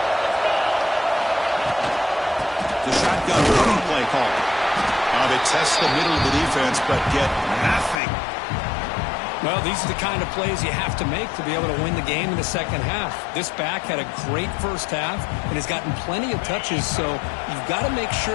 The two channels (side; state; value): right; drops out; at 8.0 s